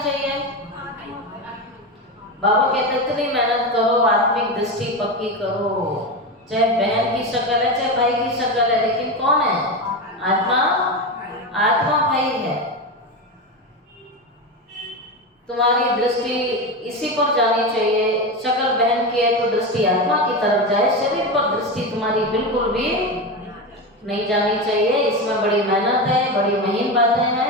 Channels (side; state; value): both; normal; correlation 0.18